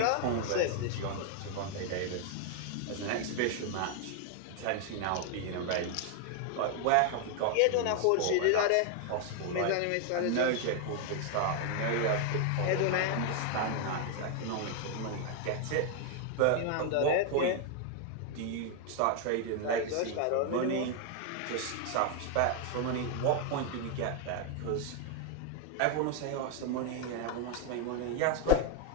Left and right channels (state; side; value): different; both; correlation 0.00